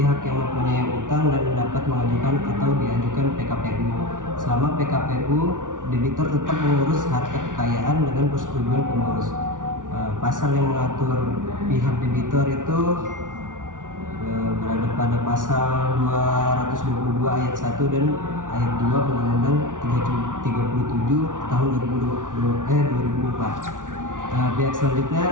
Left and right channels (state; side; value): late; left; 0.88 ms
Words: yang mempunyai utang dan dapat mengajukan atau diajukan PKPU. Selama PKPU, debitor tetap mengurus harta kekayaan dengan persetujuan pengurus. Pasal yang mengatur pihak debitor itu berada pada pasal 222 ayat 1 dan ayat 2 Undang-Undang 37 tahun 2004. Pihak